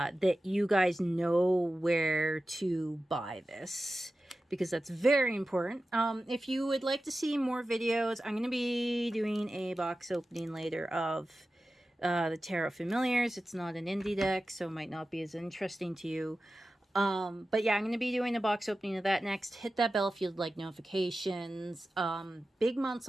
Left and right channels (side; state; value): both; normal; correlation 0.94